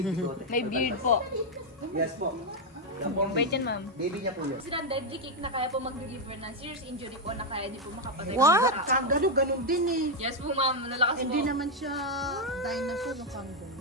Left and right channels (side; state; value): both; normal; correlation 0.02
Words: bigote. May beard po. Yes po. Yan po ang Bait yan ma'am. baby niya po yun. Sila ang deadly kick na kaya po mag-deliver ng serious injury po na kaya di po makapatay. What? kangaroo, gano'n din eh. Yes po ma'am, nalakas po. Hindi naman siya dinosaur ng